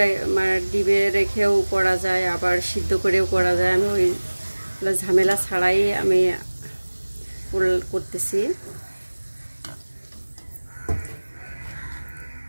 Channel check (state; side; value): inverted; both; correlation -1.00